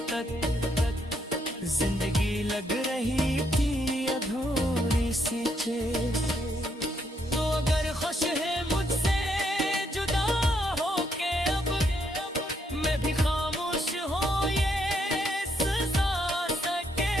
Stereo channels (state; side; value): normal; both; correlation 0.75